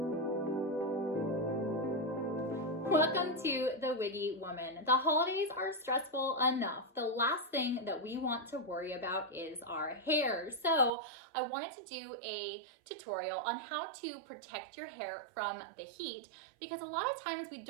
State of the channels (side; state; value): left; drops out; at 10.9 s